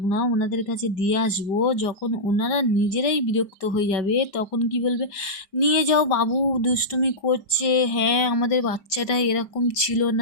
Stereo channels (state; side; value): late; right; 5.0 ms